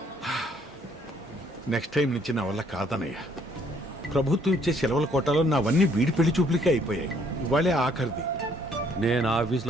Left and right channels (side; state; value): both; normal; correlation 0.65